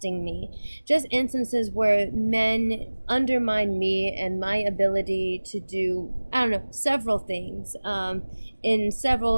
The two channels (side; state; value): both; inverted; correlation -1.00